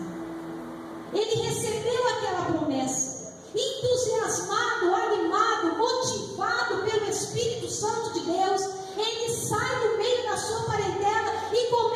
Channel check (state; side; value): identical; both; correlation 1.00